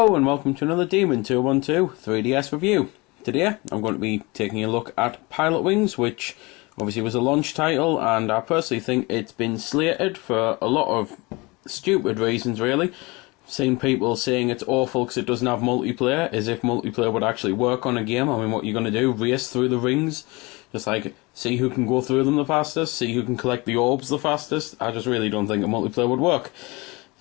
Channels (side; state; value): right; quieter; 24.9 dB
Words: and welcome to another Demon 212 3DS review. Today I'm going to be taking a look at Pilotwings, which obviously was a launch title, and I personally think it's been slated for a lot of stupid reasons really. Seen people saying it's awful because it doesn't have multiplayer, as if multiplayer would actually work on a game. I mean, what you're going to do, race through the rings, just like see who can go through them the fastest, see who can collect the orbs the fastest. I just really don't think a multiplayer would work.